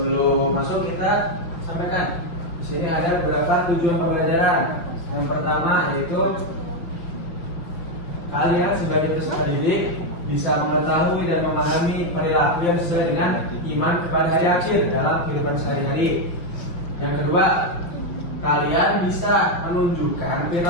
masuk kita sampaikan. Di sini ada beberapa tujuan pembelajaran. Yang pertama yaitu kalian sebagai peserta didik bisa mengetahui dan memahami perilaku yang sesuai dengan iman kepada hari akhir dalam kehidupan sehari-hari. Yang kedua, kalian bisa menunjukkan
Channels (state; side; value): late; right; 5.7 ms